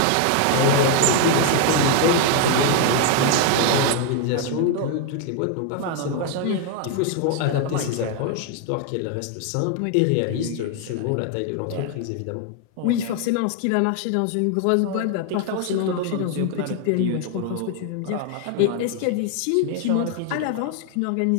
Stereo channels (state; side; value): different; both; correlation 0.01